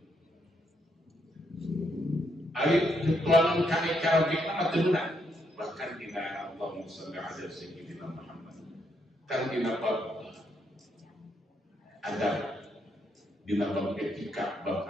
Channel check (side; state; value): both; normal; correlation 0.77